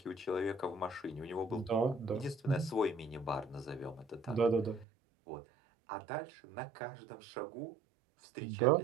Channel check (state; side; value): drops out; left; at 4.9 s